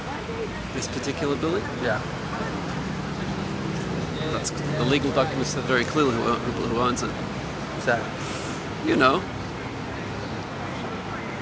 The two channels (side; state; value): both; identical; correlation 1.00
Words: This particular building? Yeah. That's, the legal documents said very clearly who owns it. Who's that? You know.